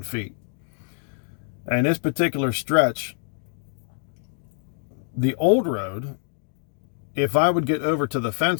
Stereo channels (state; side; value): silent; right; digital silence